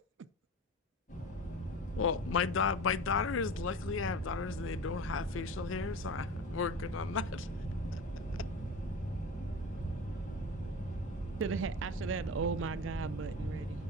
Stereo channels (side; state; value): both; normal; correlation 0.32